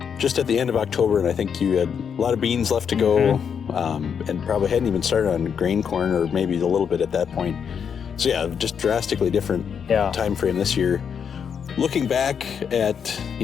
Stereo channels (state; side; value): quieter; right; 7.2 dB